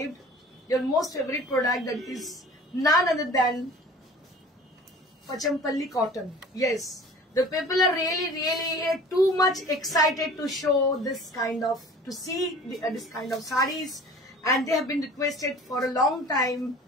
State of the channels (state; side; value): normal; both; correlation 0.44